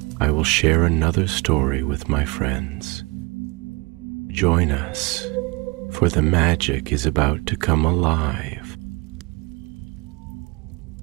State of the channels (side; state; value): left; quieter; 27.0 dB